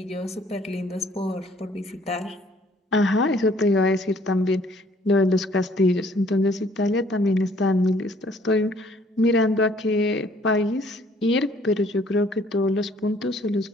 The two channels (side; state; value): both; normal; correlation 0.59